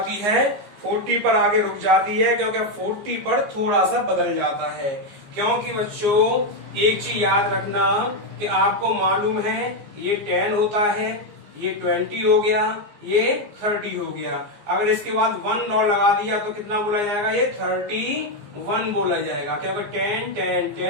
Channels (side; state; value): left; late; 15 ms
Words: है, 40 पर आगे रुक जाती है, क्योंकि 40 पर थोड़ा सा बदल जाता है। क्योंकि बच्चों एक चीज याद रखना कि आपको मालूम है ये 10 होता है, ये 20 हो गया, ये 30 हो गया। अगर इसके बाद 1 और लगा दिया तो कितना बोला जाएगा, ये 31 बोला जाएगा, क्योंकि 10 10